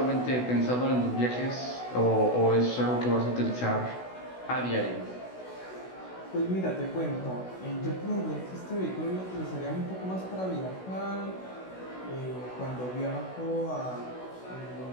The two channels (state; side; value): late; right; 16 ms